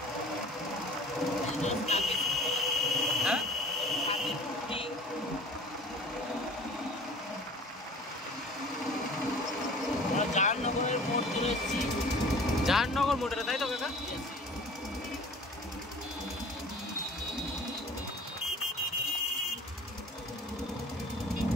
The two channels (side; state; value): both; normal; correlation 0.46